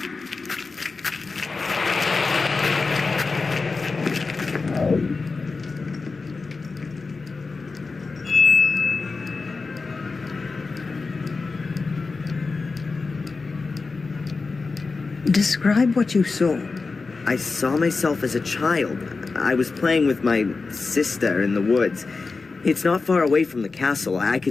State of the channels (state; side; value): quieter; right; 4.1 dB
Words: Describe what you saw. I saw myself as a child. I was playing with my sister in the woods. It's not far away from the castle. I